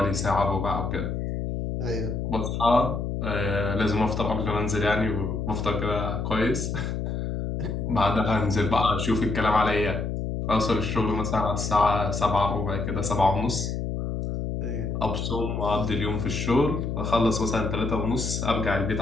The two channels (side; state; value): left; noise; hum, 3 dB below the sound